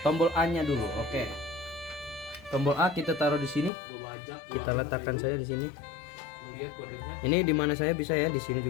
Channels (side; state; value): right; drops out; at 3.7 s